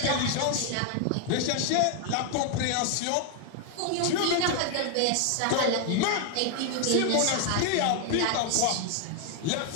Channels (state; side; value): different; both; correlation 0.00